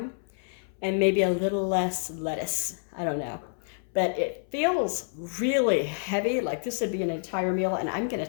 and maybe a little less lettuce. I don't know. But it feels really heavy, like this would be an entire meal, and I'm going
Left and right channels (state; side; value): silent; right; 59 dB below the other